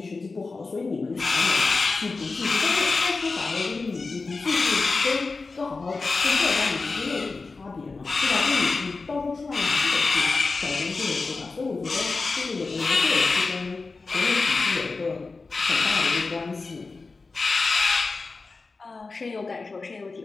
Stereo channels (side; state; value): right; quieter; 4.0 dB